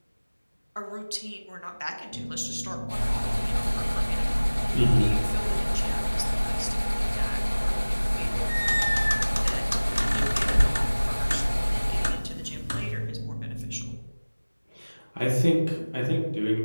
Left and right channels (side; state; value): both; inverted; correlation -1.00